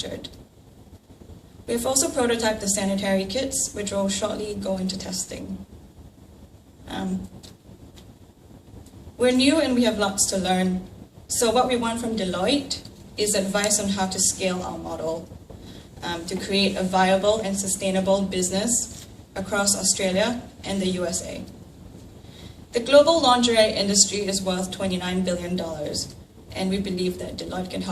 We have also prototyped the sanitary kits, which will shortly go into testing. We're new and we have lots to learn. So what we want from Deloitte is advice on how to scale our model to create a viable and sustainable business across Australia and the USA. The global lingerie industry is worth $29 billion, and we believe that Deloitte can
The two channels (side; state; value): both; identical; correlation 1.00